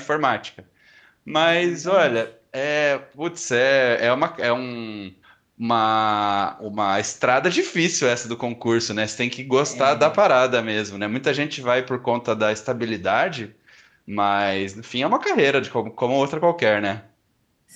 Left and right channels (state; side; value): identical; both; correlation 1.00